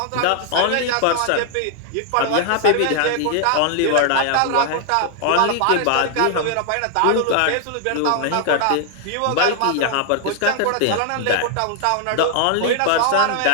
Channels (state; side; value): different; both; correlation 0.00